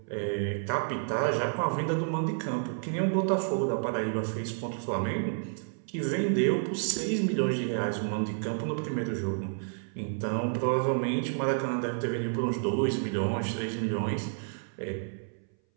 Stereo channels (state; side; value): silent; left; 58 dB below the other